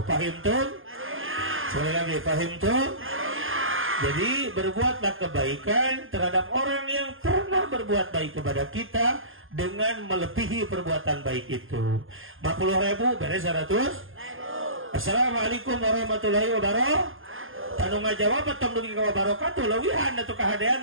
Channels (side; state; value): left; late; 0.59 ms